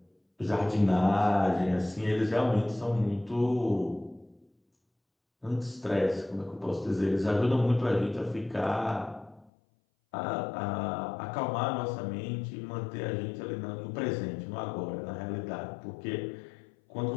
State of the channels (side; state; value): right; drops out; at 9.5 s